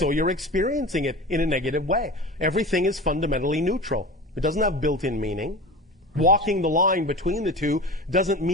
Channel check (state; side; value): normal; both; correlation 0.32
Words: you're experiencing it in a negative way. Everything is fundamentally neutral. It doesn't have built-in meaning. Right. Walking the line between the two doesn't